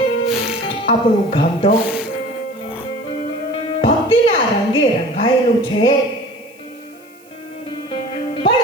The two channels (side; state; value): right; noise; hiss, 29 dB below the sound